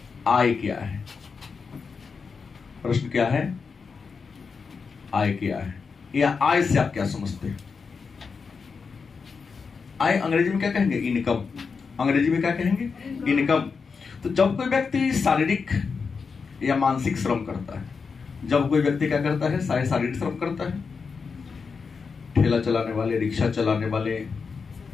आय क्या है? प्रश्न क्या है, आय क्या है, या आय से आप क्या समझते हैं? आय अंग्रेजी में क्या कहेंगे, इनकम। अंग्रेजी में क्या कहेंगे, इनकम। तो जब कोई व्यक्ति शारीरिक या मानसिक श्रम करता है, जब कोई व्यक्ति क्या करता है, शारीरिक श्रम करता है, ठेला चलाने वाले, रिक्शा चलाने वाले,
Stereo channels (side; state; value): right; quieter; 5.3 dB